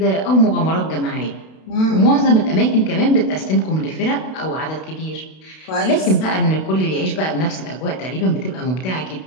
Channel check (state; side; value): late; right; 32 ms